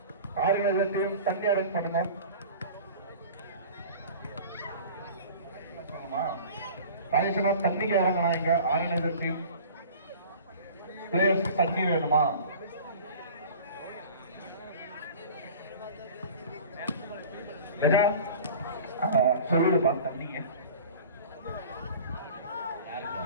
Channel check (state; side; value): inverted; both; correlation -0.41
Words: ஆர்கனைசர் டீம் தண்ணி அரேஞ்ச் பண்ணுங்க. ராஜேஷனா தண்ணிக்கு இறங்கண்ணா. இங்க ஆர்கனைசர் டீம் பிளேயர்ஸ்க்கு தண்ணி வேணுமா? சொல்லுப்பா தண்ணிங்க.